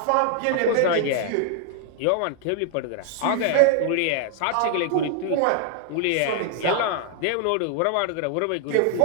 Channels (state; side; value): different; both; correlation 0.00